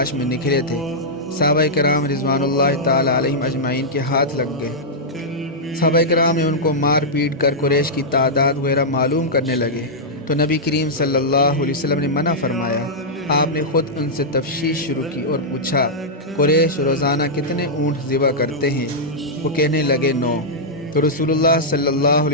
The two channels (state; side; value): normal; both; correlation -0.09